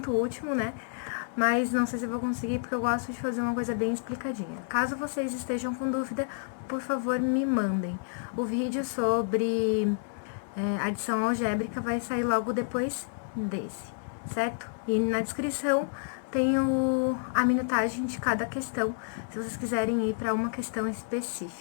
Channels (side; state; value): right; silent; digital silence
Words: o último, né? Mas não sei se eu vou conseguir, porque eu gosto de fazer uma coisa bem explicadinha. Caso vocês estejam com dúvida, por favor, me mandem. O vídeo sobre adição algébrica vai sair logo depois desse, certo? E na descrição tem a minutagem de cada questão, se vocês quiserem ir para uma questão